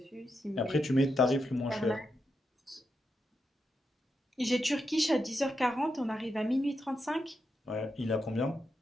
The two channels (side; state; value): both; normal; correlation 0.85